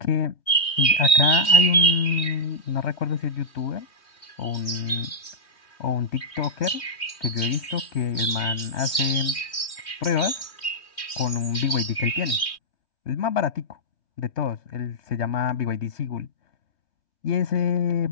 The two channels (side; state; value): right; late; 3.1 ms